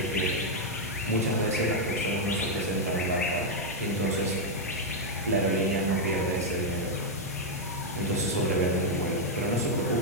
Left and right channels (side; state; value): both; normal; correlation -0.01